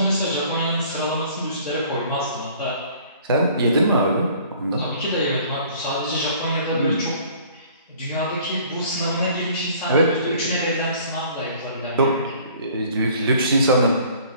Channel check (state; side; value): inverted; both; correlation -0.53